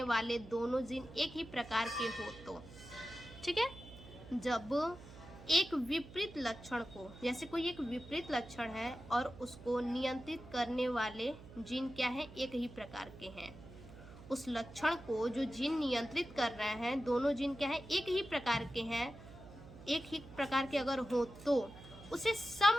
वाले दोनों जीन एक ही प्रकार के हो तो, ठीक है। जब एक विपरीत लक्षण को, जैसे कोई एक विपरीत लक्षण है और उसको नियंत्रित करने वाले जीन क्या है, एक ही प्रकार के हैं। उस लक्षण को जो जीन नियंत्रित कर रहे हैं, दोनों जीन क्या है, एक ही प्रकार के हैं, एक ही प्रकार के अगर हो तो उसे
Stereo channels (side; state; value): right; noise; hum, 17 dB below the sound